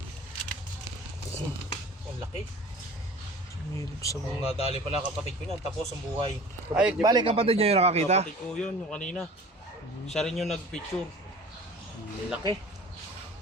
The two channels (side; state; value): both; normal; correlation 0.43